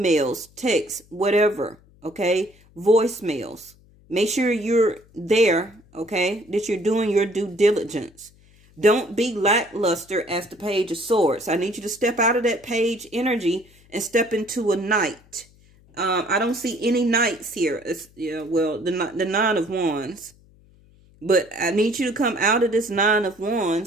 texts, whatever, okay, voicemails. Make sure you're there, okay, that you're doing your due diligence. Don't be lackluster as the Page of Swords. I need you to step out of that page energy and step into a knight. I don't see any knights here. It's, yeah, well, the 9 of Wands. But I need you to come out of this 9 of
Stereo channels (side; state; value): left; noise; hum, 28 dB below the sound